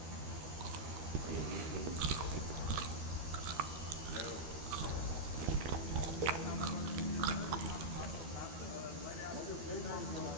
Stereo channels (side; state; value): left; late; 12 ms